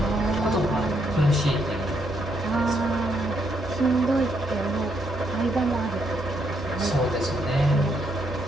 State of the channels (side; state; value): both; normal; correlation 0.76